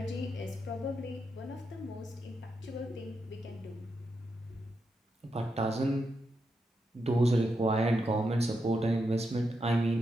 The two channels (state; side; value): normal; both; correlation 0.84